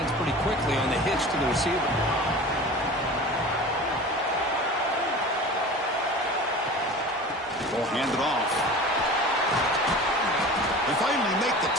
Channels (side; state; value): both; normal; correlation 0.37